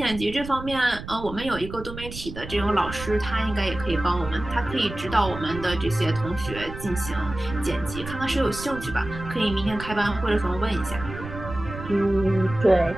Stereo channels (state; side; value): noise; right; rumble, 11 dB below the sound